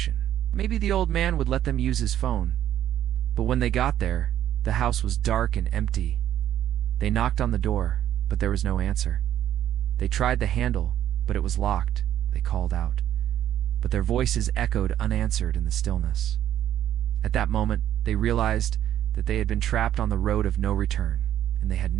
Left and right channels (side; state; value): left; quieter; 11.4 dB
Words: Maybe the old man would let them use his phone. But when they got there, the house was dark and empty. They knocked on the door, but there was no answer. They tried the handle, but it was locked. They called out, but their voices echoed unanswered in the stillness. At that moment, they realized that they had been trapped on the road of no return, and they had